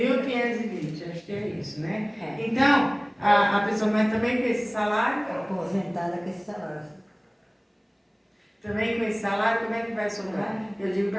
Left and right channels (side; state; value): both; identical; correlation 1.00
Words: acho que é isso, né? É. Então, a pessoa mas também com esse salário, Aposentada com esse salário. também com esse salário, como é que vai sobrar? Eu digo